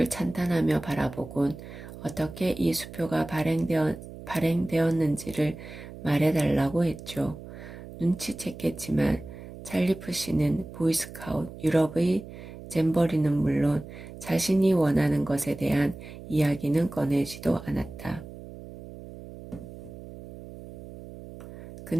찬탄하며 바라보곤 어떻게 이 수표가 발행되었는지를 말해달라고 했죠. 눈치챘겠지만 찰리프 씨는 보이스카웃 유럽의 잼버리는 물론 자신이 원하는 것에 대한 이야기는 꺼내지도 않았다.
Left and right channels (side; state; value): right; noise; hum, 14 dB below the sound